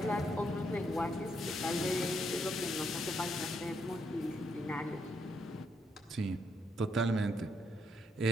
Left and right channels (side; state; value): both; normal; correlation 0.76